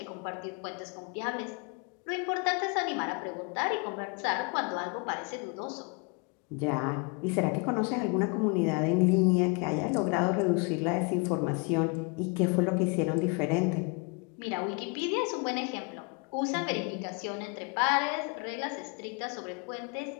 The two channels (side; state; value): right; quieter; 32.8 dB